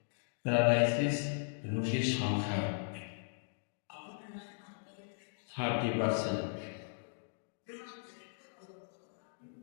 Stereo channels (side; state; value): right; silent; digital silence